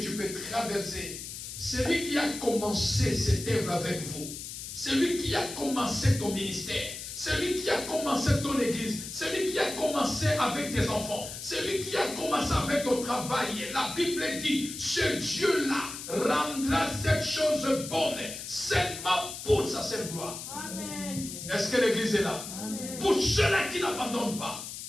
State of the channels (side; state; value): left; noise; hiss, 9 dB below the sound